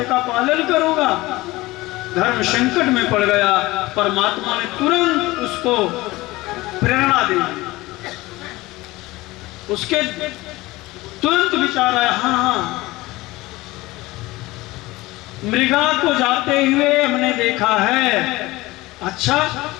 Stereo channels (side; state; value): right; quieter; 19.9 dB